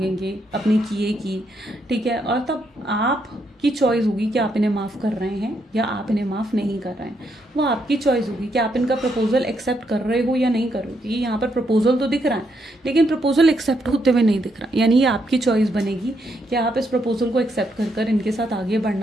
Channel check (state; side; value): normal; both; correlation 0.77